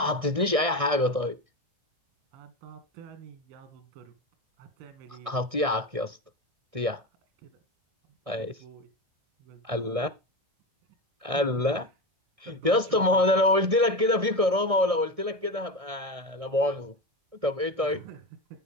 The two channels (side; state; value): left; late; 1.6 ms